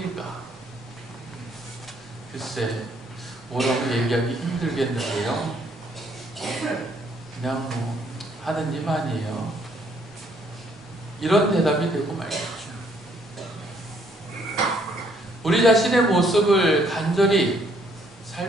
글쎄, 뭐라고 얘기하기 힘들겠는데요. 그냥 하느님 아니에요. 이런 대답이 되고 말겠죠. 우리 자신의 모습을 간절히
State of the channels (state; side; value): normal; both; correlation 0.67